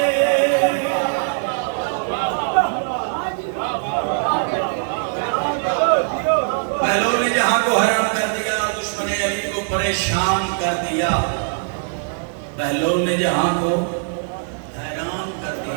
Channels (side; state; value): left; silent; digital silence